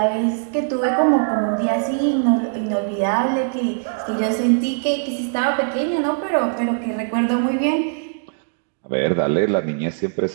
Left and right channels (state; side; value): silent; left; digital silence